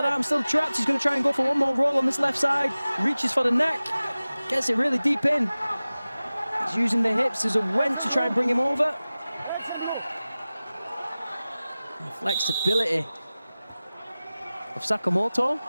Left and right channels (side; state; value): both; inverted; correlation -0.97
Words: arm still trapped. He's going to try and go for one more roll on this left side. Reaches for the neck, gets it really deep in. He's using the hips as a wench to try and bring him over. The flexibility of Sakamoto